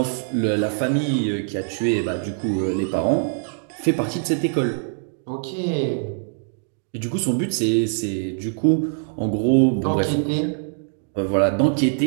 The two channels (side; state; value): left; silent; digital silence